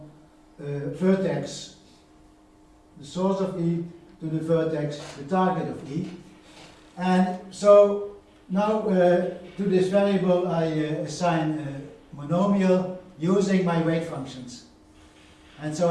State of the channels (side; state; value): both; identical; correlation 1.00